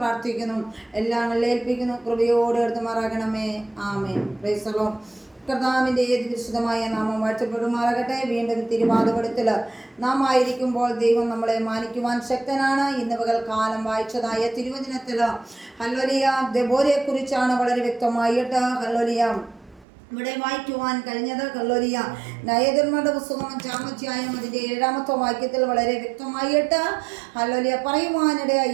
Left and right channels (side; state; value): left; drops out; at 19.9 s